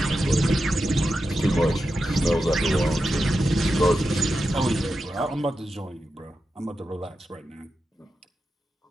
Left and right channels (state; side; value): normal; both; correlation 0.90